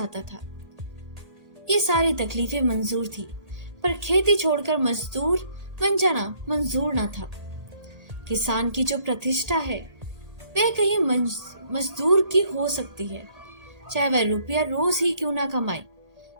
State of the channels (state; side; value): late; left; 1.8 ms